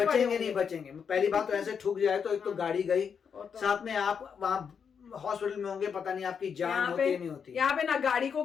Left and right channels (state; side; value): quieter; right; 6.8 dB